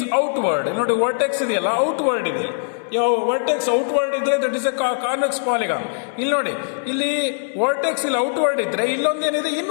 outward. ನೋಡಿ ವರ್ಟೆಕ್ಸ್ ಇದೆಯಲ್ಲ, ಔಟ್ವರ್ಡ್ ಇದೆ. ಯಾವ ವರ್ಟೆಕ್ಸ್ ಔಟ್ವರ್ಡ್ ಇದ್ರೆ that is a convex polygon. ಇಲ್ಲಿ ನೋಡಿ, ಇಲ್ಲಿ ವರ್ಟೆಕ್ಸ್ ಇಲ್ಲಿ ಔಟ್ವರ್ಡ್ ಇದ್ರೆ ಇಲ್ಲೊಂದೇನಿದೆ,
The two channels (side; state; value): right; silent; digital silence